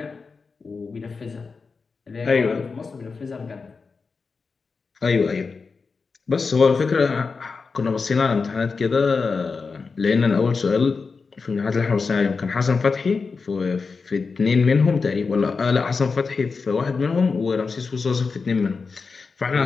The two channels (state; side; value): quieter; right; 4.7 dB